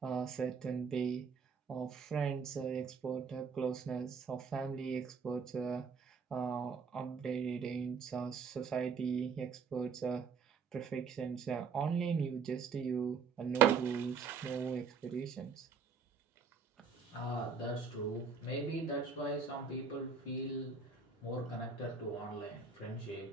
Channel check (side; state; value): left; quieter; 5.6 dB